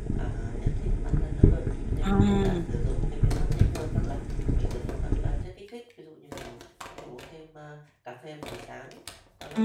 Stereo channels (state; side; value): identical; both; correlation 1.00